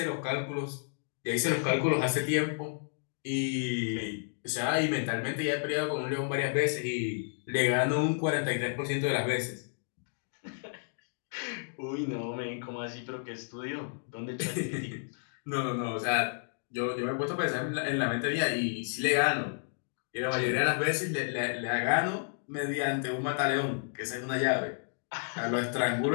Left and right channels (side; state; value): right; silent; digital silence